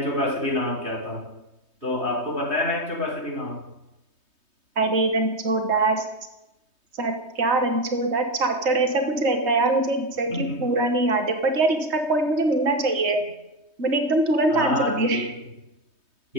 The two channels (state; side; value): late; left; 3.2 ms